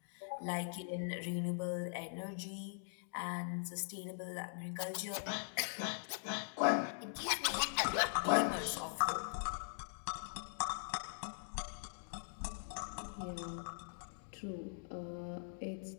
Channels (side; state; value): right; silent; digital silence